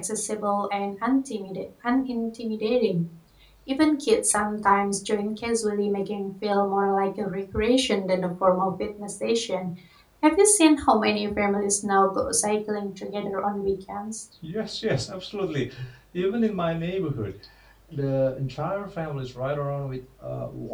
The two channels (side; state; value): both; identical; correlation 1.00